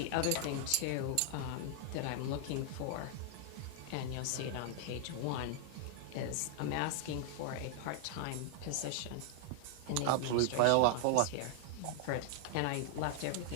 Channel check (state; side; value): different; both; correlation 0.00